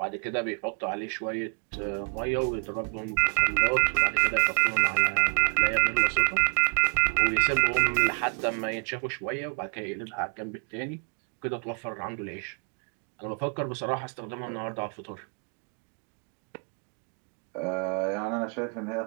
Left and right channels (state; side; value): quieter; left; 40.0 dB